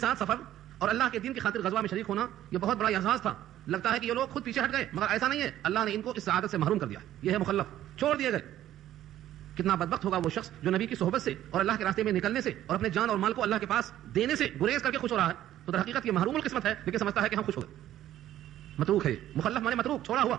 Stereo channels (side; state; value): left; quieter; 12.7 dB